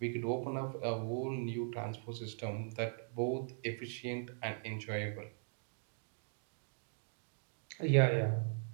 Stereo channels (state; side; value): silent; left; digital silence